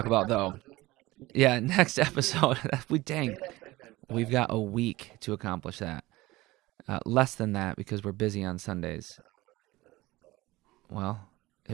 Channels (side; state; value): left; quieter; 19.4 dB